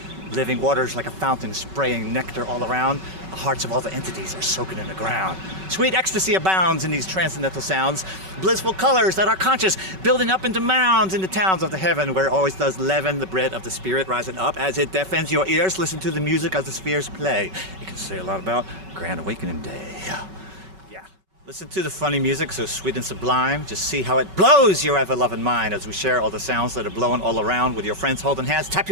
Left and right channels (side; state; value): left; late; 5.3 ms